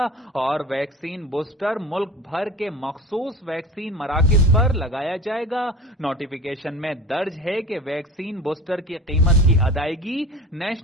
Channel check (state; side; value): normal; both; correlation 0.37